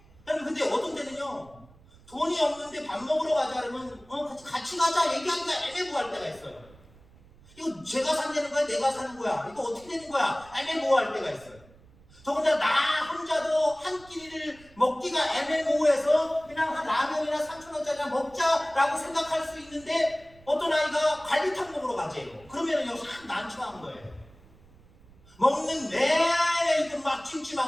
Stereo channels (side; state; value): right; noise; rumble, 25 dB below the sound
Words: 근데 어떤 때는요, 돈이 없는데 밥 먹으러 가자 그러면 같이 가자 얘기하기가 애매모호할 때가 있어요. 이거 제가 산다는 거야? 내가 사는 거야? 이거 어떻게 되는 거야? 애매모호할 때가 있어요. 더군다나 나 혼자도 한 끼니를 먹기가 애매모호해서 그냥 한 라면이나 3,000원짜리 먹자라고 생각할 수 있는데 어떤 아이가 갈비탕 먹으러 가재요. 그러면은요, 참 난처한 거예요. 먹는 내내 이거 막